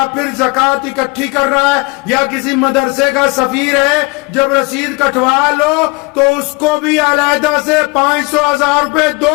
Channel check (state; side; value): quieter; right; 27.6 dB